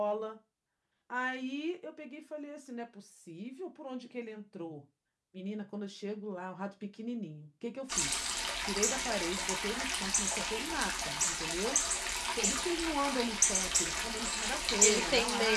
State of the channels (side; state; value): both; identical; correlation 1.00